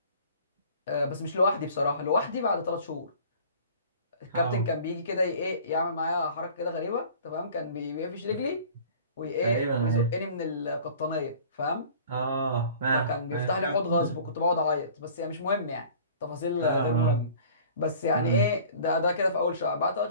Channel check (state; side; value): inverted; both; correlation -0.47